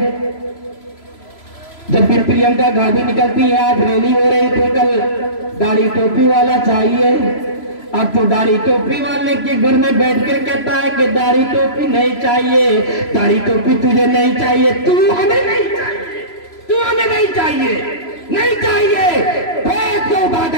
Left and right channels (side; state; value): right; late; 3.0 ms